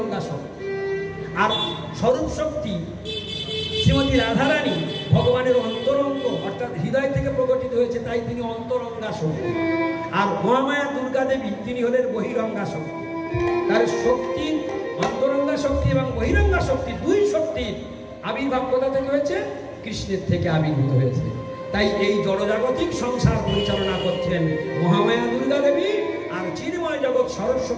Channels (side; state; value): both; identical; correlation 1.00